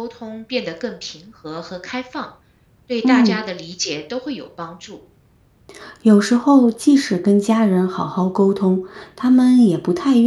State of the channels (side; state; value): both; identical; correlation 1.00